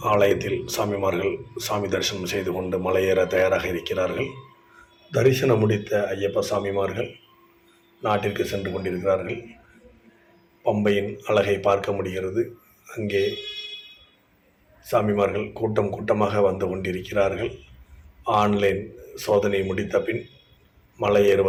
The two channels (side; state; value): both; identical; correlation 1.00